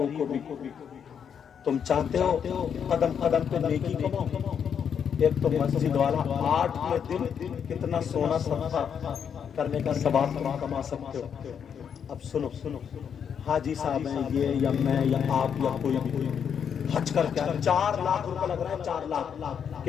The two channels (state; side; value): quieter; right; 7.6 dB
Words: کو بھی تم چاہتے ہو قدم قدم پہ نیکی کماؤ. ایک تو مسجد والا 8 دن کتنا سونا صدقہ کرنے کا ثواب تم کما سکتے ہو. اب سنو حاجی صاحب ہیں یہ یا میں یا آپ یا کوئی بھی حج کر کے 4 لاکھ روپے لگ رہے ہیں. 4 لاکھ